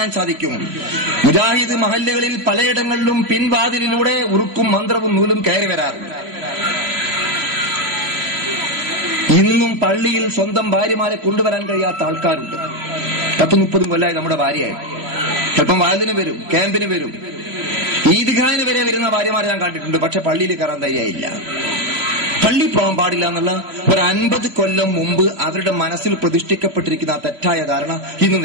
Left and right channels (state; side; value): late; left; 2.9 ms